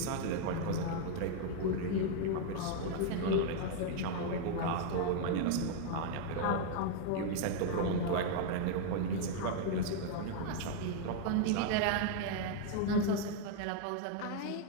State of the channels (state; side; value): different; both; correlation 0.00